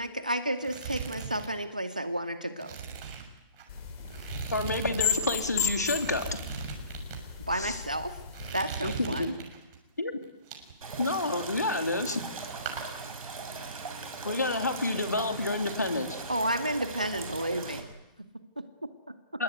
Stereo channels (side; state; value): both; inverted; correlation -0.51